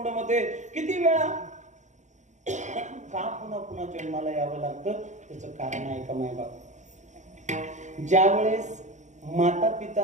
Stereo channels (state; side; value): late; left; 0.35 ms